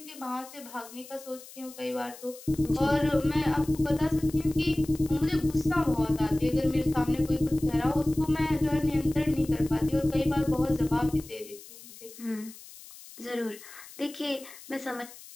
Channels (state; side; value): noise; left; hiss, 18 dB below the sound